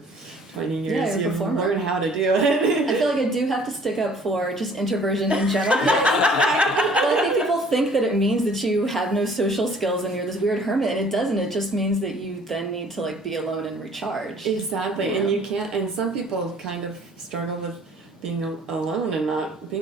20 years, you learn how to do it. I feel like I do have to stick up for just introversion in general. Well, I think people think that it means that you have no social skills and you're this weird hermit, and it doesn't. It just means that you then need to be alone and recharge. Exactly, and you can't. And some people kind of struggle with being alone and not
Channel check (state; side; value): normal; both; correlation 0.54